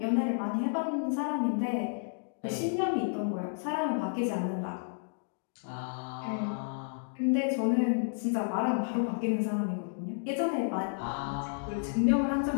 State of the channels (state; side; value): silent; right; digital silence